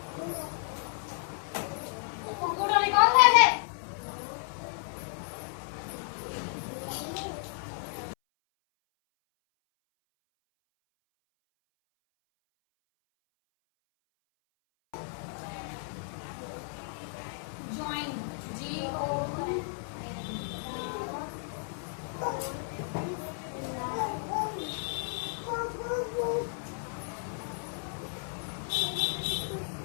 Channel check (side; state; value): right; silent; 56 dB below the other